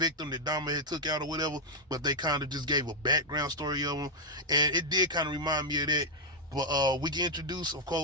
that Dahmer had took out or whatever, but they kind of just gave a background story of him, and it did kind of remind me of that. But we get introduced, of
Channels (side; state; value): both; normal; correlation -0.02